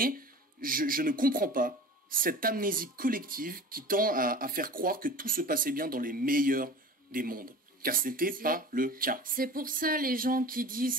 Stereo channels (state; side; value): normal; both; correlation 0.38